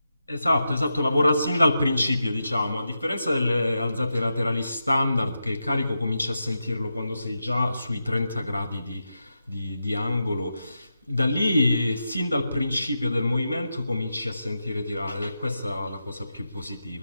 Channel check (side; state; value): both; inverted; correlation -0.88